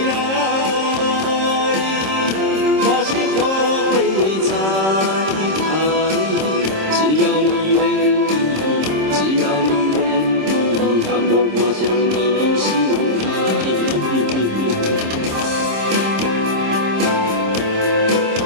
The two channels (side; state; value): left; late; 26 ms